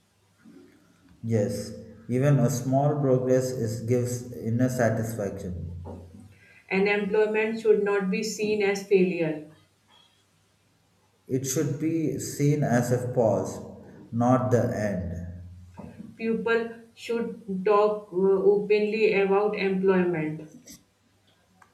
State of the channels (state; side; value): identical; both; correlation 1.00